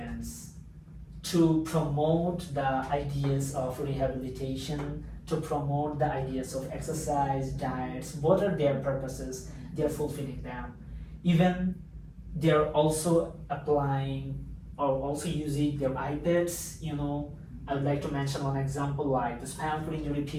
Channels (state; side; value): identical; both; correlation 1.00